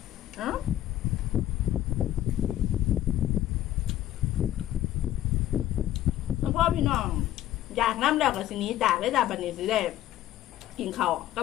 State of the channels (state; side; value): quieter; right; 13.2 dB